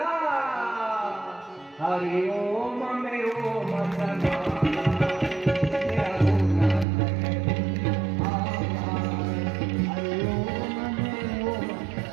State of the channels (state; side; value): drops out; left; at 6.9 s